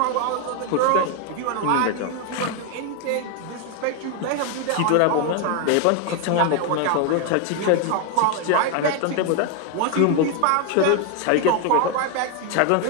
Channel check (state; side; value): different; both; correlation 0.01